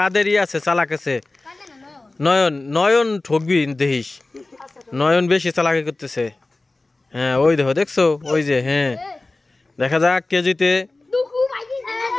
আছে চালাক আছে নয়ন ঠকবি দেখিস নয়ন বেশি চালাকি করতেছে হ্যাঁ ওই দেখছো ওই যে হ্যাঁ দেখা যাক কে জিতে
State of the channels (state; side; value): quieter; right; 3.1 dB